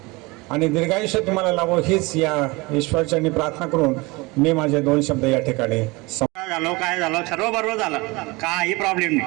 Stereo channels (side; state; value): left; quieter; 24.3 dB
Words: आणि दीर्घायुष्य तुम्हाला लाभो हीच या ईश्वरचरणी प्रार्थना करून मी माझे 2 शब्द या ठिकाणी काय झालं सर्व बरोबर झालं, काही प्रॉब्लेम